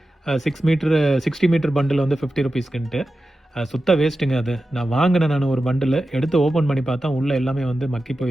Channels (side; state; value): both; normal; correlation 0.92